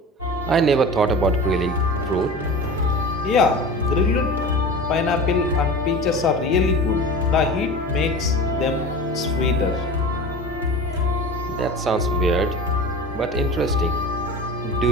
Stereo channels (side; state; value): both; normal; correlation 0.34